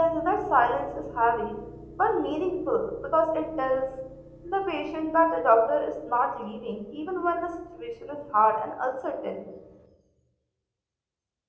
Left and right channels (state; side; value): identical; both; correlation 1.00